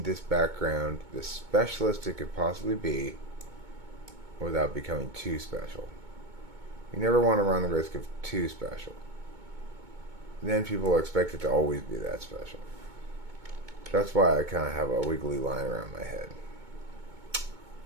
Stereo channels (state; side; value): late; left; 2.2 ms